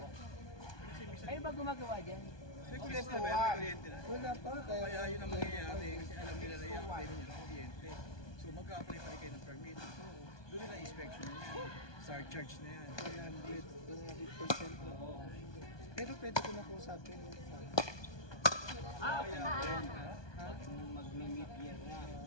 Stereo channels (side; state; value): right; late; 1.2 ms